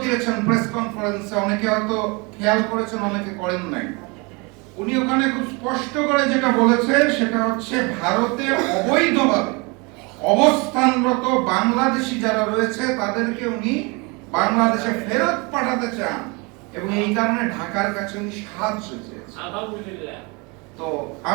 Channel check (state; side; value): quieter; left; 28.6 dB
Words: দিয়েছেন প্রেস কনফারেন্সে, অনেকে হয়তো খেয়াল করেছেন, অনেকে করেন নাই। উনি ওখানে খুব স্পষ্ট করে যেটা বলেছে সেটা হচ্ছে ভারতে অবৈধভাবে অবস্থানরত বাংলাদেশি যারা রয়েছে তাদেরকে উনি বাংলাদেশে ফেরত পাঠাতে চান এবং এই কারণে ঢাকার কাছে উনি সাহায্য চেয়েছেন। তো